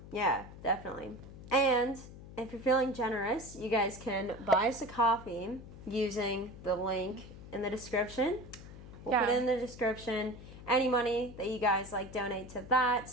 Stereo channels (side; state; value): left; noise; hum, 15 dB below the sound